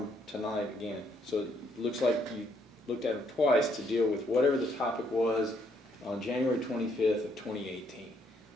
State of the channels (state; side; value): normal; both; correlation 0.71